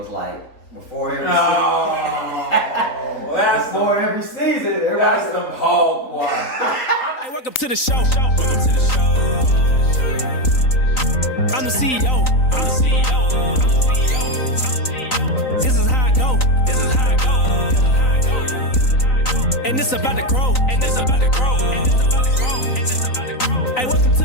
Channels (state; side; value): late; right; 3.9 ms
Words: like, before every season, That's some hog water. Hey, welcome to the show. I'm the CEO. This is how I go. And it's about to grow. Hey, welcome to